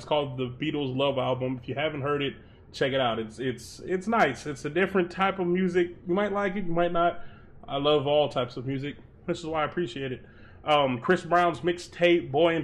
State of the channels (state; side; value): identical; both; correlation 1.00